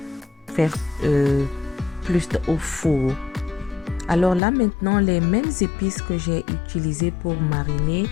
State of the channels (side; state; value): right; drops out; at 4.4 s